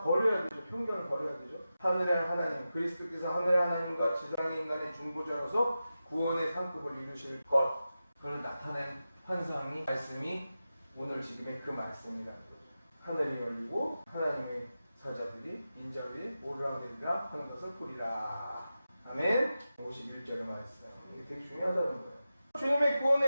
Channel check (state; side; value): inverted; both; correlation -0.92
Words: 버려야 되죠. 편견을 버려야 되죠. 하늘의 하나님, 그리스도께서 하늘의 하나님과 지상의 인간의 중보자로서 구원의 상급을 이루실 것, 그걸 나타낸 환상이, 말씀이 오늘 지금의 그 말씀이라는 거죠. 하늘이 열리고 하나님의 사자들이 인자 위에 오르락내리락 하는 것을 보리라. 아멘. 51절의 말씀. 이게 되게 중요하다는 거예요. 주님의